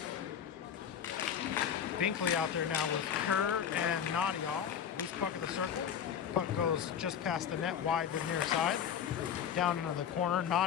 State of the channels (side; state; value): right; quieter; 8.5 dB